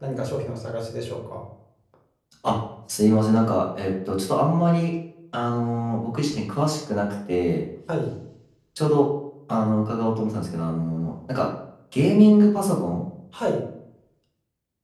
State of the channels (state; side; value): identical; both; correlation 1.00